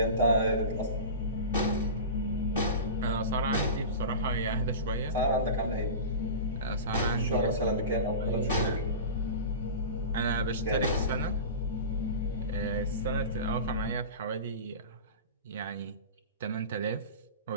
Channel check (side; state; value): both; inverted; correlation -0.30